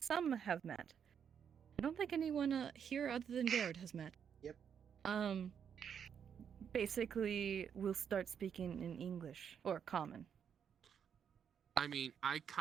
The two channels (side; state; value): left; quieter; 7.8 dB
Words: have met, I don't think anyone here other than Garrett has met. Yep. Basically, we'll start speaking in English or common. I mean, I